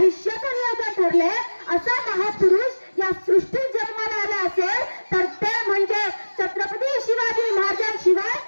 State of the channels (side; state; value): both; inverted; correlation -1.00